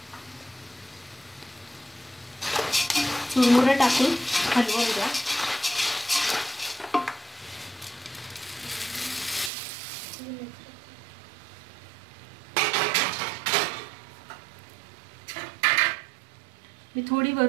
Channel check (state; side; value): drops out; left; at 9.5 s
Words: चुरमुरे टाकून हलवून द्या। मी थोडी